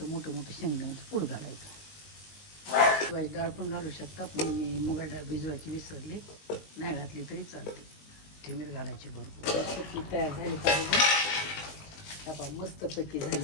मोठं शेंगदाण्याचं कूट घालायचं. मुगाची डाळ पण घालू शकता, पण मी मुगाची डाळ भिजवायची विसरली, नाही घातली तरी चालते. ठेमीर घालायची भरपूर. तयार झाली पाहिजे. आपण मस्तपैकी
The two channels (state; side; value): late; right; 19 ms